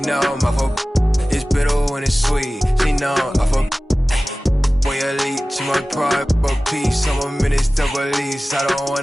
know I'm off a. It's bitter when it's sweet. She know I'm off a. Boy elite, she my pride, a piece. I'm a minister police, I don't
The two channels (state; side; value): normal; both; correlation 0.97